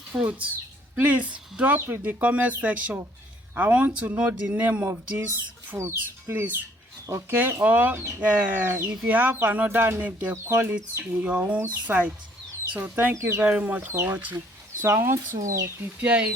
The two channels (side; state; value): both; normal; correlation 0.62